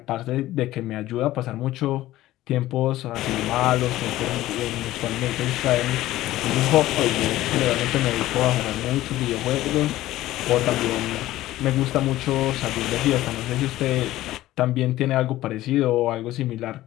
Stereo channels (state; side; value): quieter; right; 15.5 dB